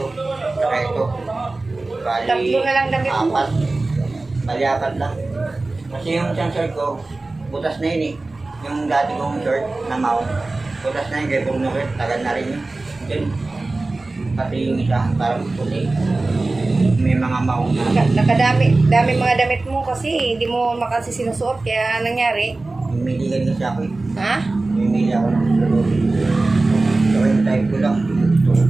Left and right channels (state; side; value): quieter; left; 3.2 dB